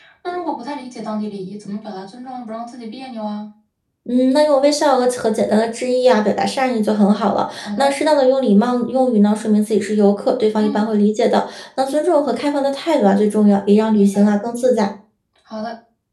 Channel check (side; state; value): both; identical; correlation 1.00